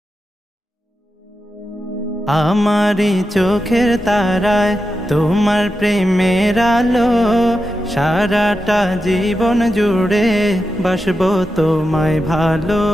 আমারি চোখের তারায় তোমার প্রেমের আলো, সারাটা জীবন জুড়ে বাসবো তোমায় ভালো।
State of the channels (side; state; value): both; normal; correlation 0.89